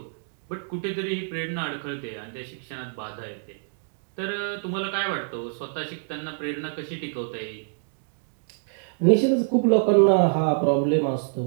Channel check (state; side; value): silent; left; digital silence